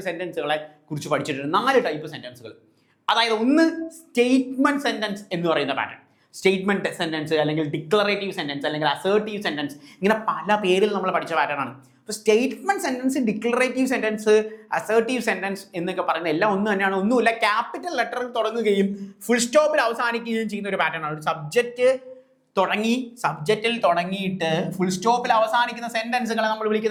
സെൻറ്റൻസുകളെ കുറിച്ച് പഠിച്ചിട്ടുണ്ട്. 4 ടൈപ്പ് സെൻറ്റൻസുകൾ. അതായത് ഒന്ന് സ്റ്റേറ്റ്മെൻറ്റ് സെൻറ്റൻസ് എന്ന് പറയുന്ന പാറ്റേൺ. സ്റ്റേറ്റ്മെൻറ്റ് സെൻറ്റൻസ് അല്ലെങ്കിൽ ഡിക്ലറേറ്റീവ് സെൻറ്റൻസ് അല്ലെങ്കിൽ അസേർട്ടീവ് സെൻറ്റൻസ്, ഇങ്ങനെ പല പേരിൽ നമ്മൾ പഠിച്ച പാറ്റേൺ ആണ്. അപ്പോൾ statement sentence, declarative sentence, assertive sentence എന്നൊക്കെ പറയുന്ന എല്ലാം ഒന്ന് തന്നെയാണ്. ഒന്നുമില്ല, ക്യാപിറ്റൽ ലെറ്ററിൽ തുടങ്ങുകയും ഫുൾ സ്റ്റോപ്പിൽ അവസാനിക്കുകയും ചെയ്യുന്ന ഒരു പാറ്റേൺ ആണ്. ഒരു സബ്ജക്റ്റിൽ തുടങ്ങിയിട്ട് ഫുൾ സ്റ്റോപ്പിൽ അവസാനിക്കുന്ന സെൻറ്റൻസുകളെ നമ്മൾ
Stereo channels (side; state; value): both; identical; correlation 1.00